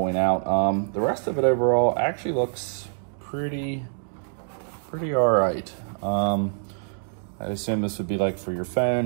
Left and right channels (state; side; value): silent; left; digital silence